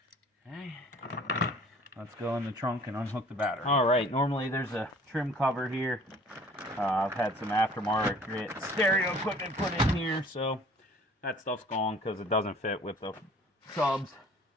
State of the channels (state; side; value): normal; both; correlation 0.51